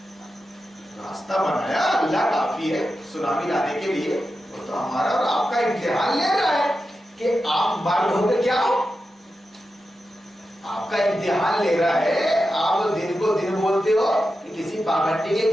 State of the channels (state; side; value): normal; both; correlation 0.90